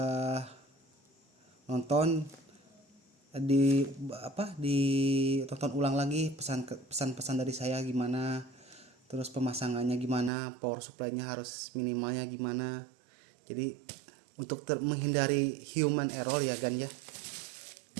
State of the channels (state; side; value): drops out; left; at 10.3 s